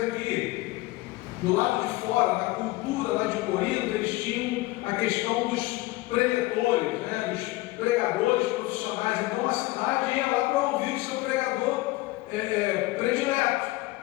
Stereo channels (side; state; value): right; quieter; 20.1 dB